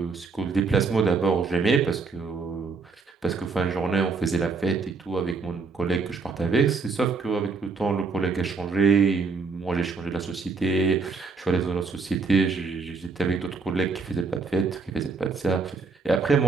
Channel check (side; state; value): left; quieter; 4.5 dB